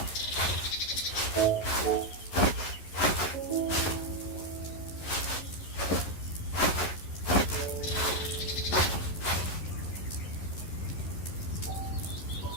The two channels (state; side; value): late; right; 11 ms